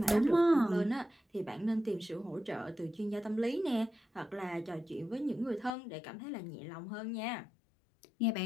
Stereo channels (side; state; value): right; drops out; at 5.7 s